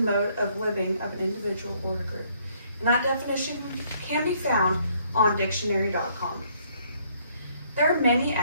of living of an individual or a group. And that definition can be found on dictionary.com. There are many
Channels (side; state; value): both; inverted; correlation -0.66